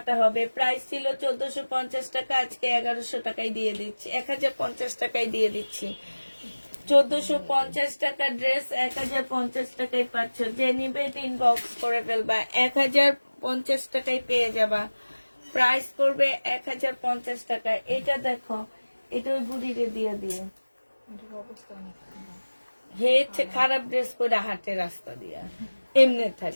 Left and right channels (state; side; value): inverted; both; correlation -1.00